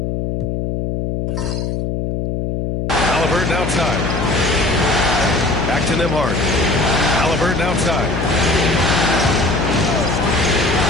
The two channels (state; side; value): noise; left; hum, 2 dB below the sound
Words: Halliburton outside. Back to Nembhard. Halliburton outside.